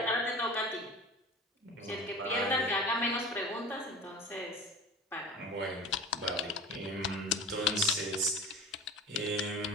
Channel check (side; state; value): both; normal; correlation 0.36